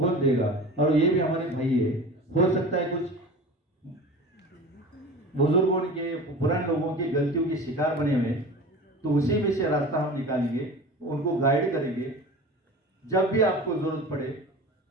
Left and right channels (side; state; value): both; normal; correlation 0.35